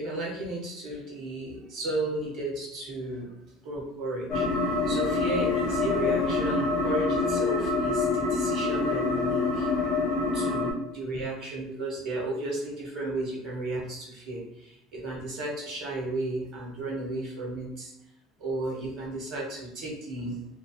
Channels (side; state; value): both; normal; correlation 0.42